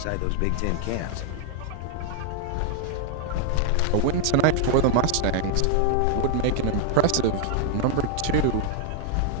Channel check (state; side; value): different; both; correlation 0.00